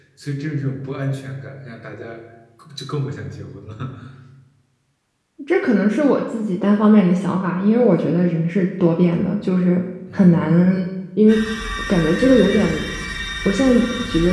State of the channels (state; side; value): identical; both; correlation 1.00